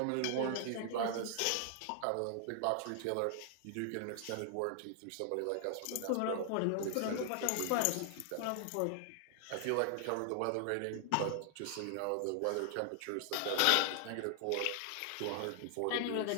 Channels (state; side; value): different; both; correlation 0.00